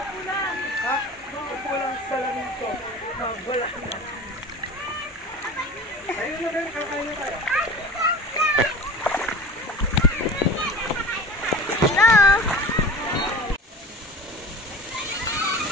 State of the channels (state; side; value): normal; both; correlation 0.37